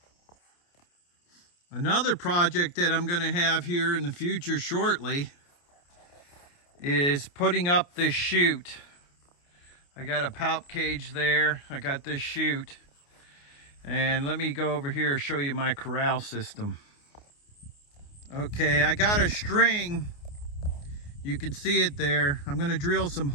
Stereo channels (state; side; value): late; right; 29 ms